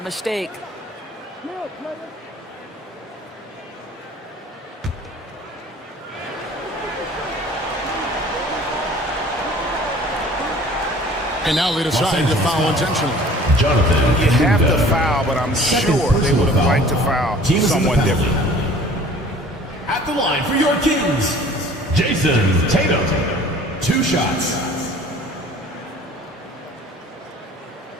mistake. And now they decide to foul intentionally. Jonathan. You have to foul, but I'm sure they would have liked to foul someone different. At the line for your Kings, Jason Tatum. 2 shots.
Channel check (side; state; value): both; normal; correlation 0.49